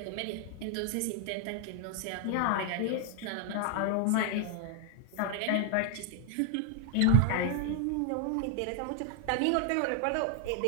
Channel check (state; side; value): different; both; correlation 0.00